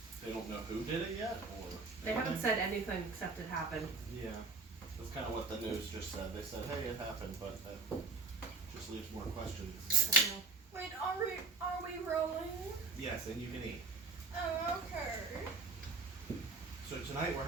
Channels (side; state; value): left; quieter; 4.0 dB